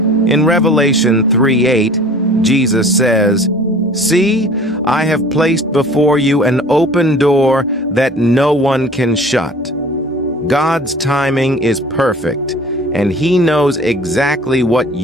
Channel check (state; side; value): normal; both; correlation 0.46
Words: In Revelation 3:8, Jesus says, "See, I have placed before you an open door that no one can shut." God's timing is perfect, and He knows exactly what